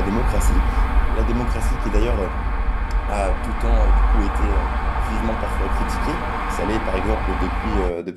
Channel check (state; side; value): identical; both; correlation 1.00